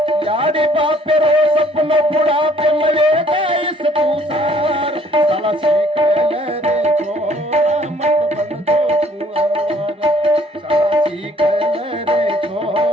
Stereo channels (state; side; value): normal; both; correlation 0.60